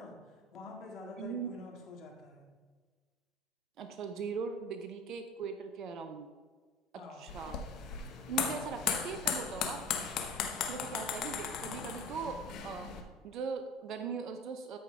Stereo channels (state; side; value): normal; both; correlation 0.40